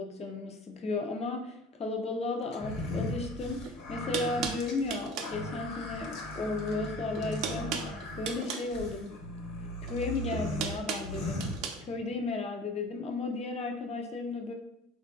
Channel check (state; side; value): normal; both; correlation 0.43